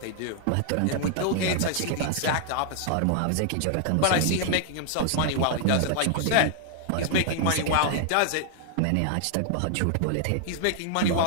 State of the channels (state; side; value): different; both; correlation 0.00